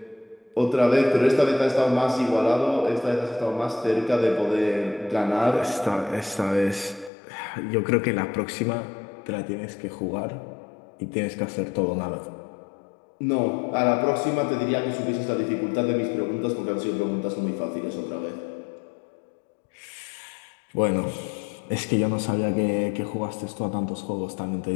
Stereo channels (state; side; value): drops out; right; at 7.1 s